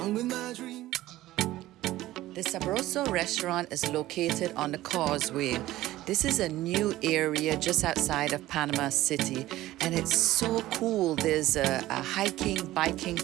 with my dream. The Sabroso restaurant is located on the causeway. This is a new area just outside of Panama City, and it's so cool. There's a hiking, biking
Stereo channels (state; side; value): quieter; left; 15.9 dB